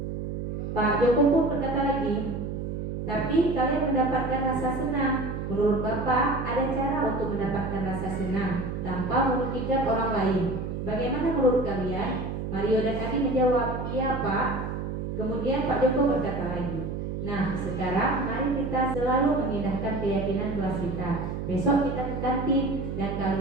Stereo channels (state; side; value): noise; right; hum, 4 dB below the sound